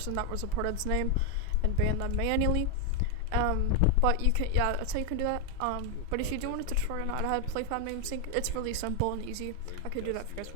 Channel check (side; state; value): both; different; correlation 0.01